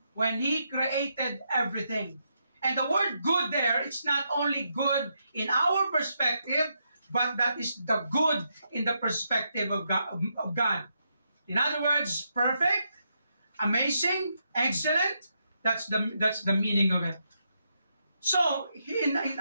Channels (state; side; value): inverted; both; correlation -0.81